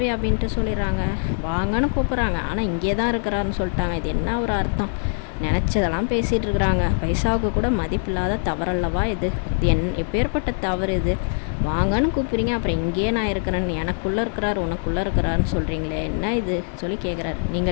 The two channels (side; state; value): right; silent; 60 dB below the other